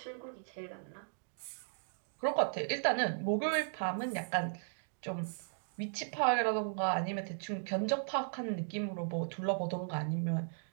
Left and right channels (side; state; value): left; silent; digital silence